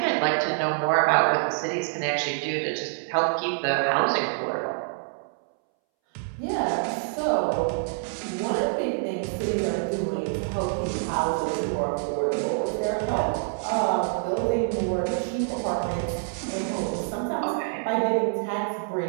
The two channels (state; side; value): silent; left; 61 dB below the other